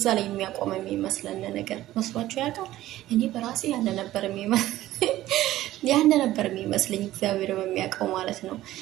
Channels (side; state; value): left; quieter; 14.9 dB